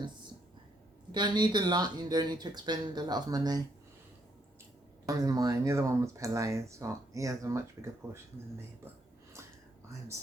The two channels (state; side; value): normal; both; correlation 0.73